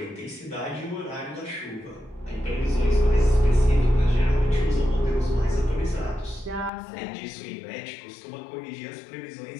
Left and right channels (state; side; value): drops out; right; at 6.7 s